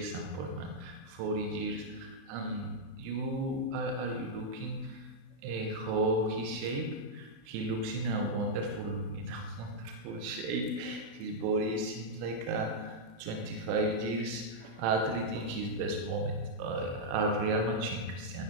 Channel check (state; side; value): late; left; 35 ms